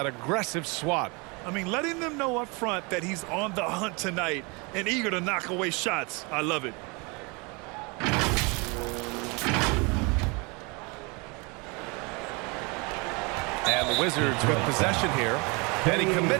aggressive swat. I mean, letting them know up front that he's on the hunt tonight and eager to knock away shots. I love it. And the Wizards with possession here. And he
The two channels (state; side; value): quieter; left; 29.3 dB